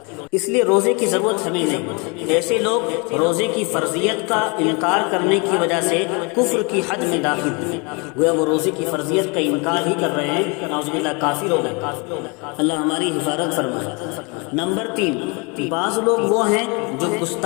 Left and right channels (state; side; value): quieter; right; 30.7 dB